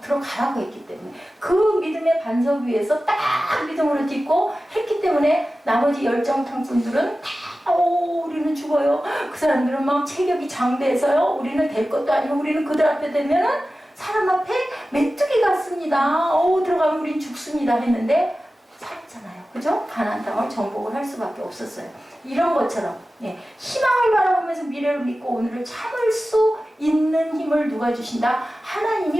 들어가라고 했기 때문에. 그 믿음의 반석 위에서 딱 믿음으로 딛고 했기 때문에 나머지 열정탕분들은 다 우리는 죽어요. 그 사람들은 막 체격이 장대해서요. 우리는 될 것도 아니고 우리는 그들 앞에 되면은 사람 앞에 메뚜기 같습니다. 들어가면 우린 죽습니다 했는데 살았잖아요. 그죠? 가나안 땅을 정복을 할 수밖에 없었어요. 이런 것처럼 희망을 바라보면서 미래를 믿고 오늘을 참을 수 있는 힘을 누가 주신다?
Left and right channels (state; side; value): normal; both; correlation 0.95